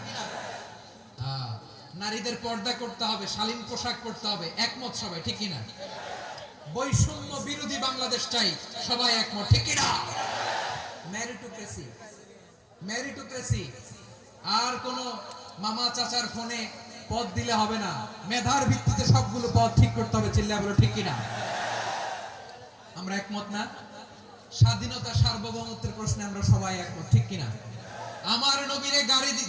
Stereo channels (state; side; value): identical; both; correlation 1.00